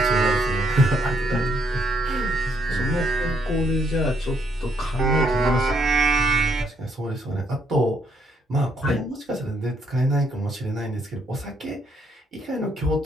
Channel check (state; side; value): normal; both; correlation 0.72